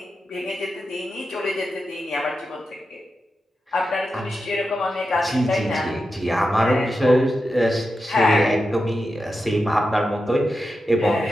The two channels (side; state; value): both; normal; correlation 0.89